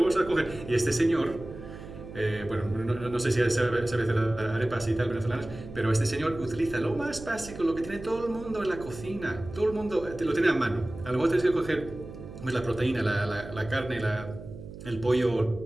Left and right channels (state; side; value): noise; right; hum, 13 dB below the sound